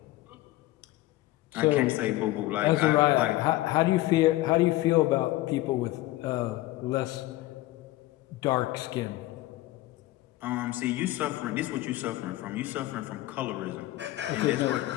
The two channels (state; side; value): quieter; right; 17.1 dB